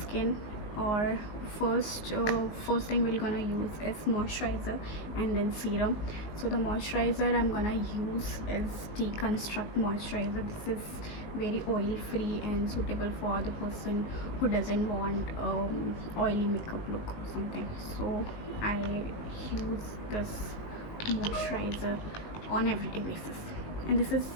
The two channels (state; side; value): late; right; 19 ms